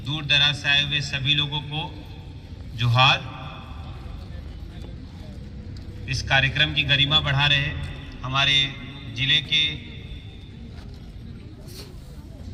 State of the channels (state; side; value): identical; both; correlation 1.00